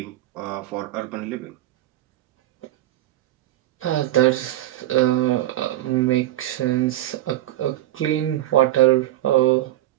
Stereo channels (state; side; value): quieter; left; 14.5 dB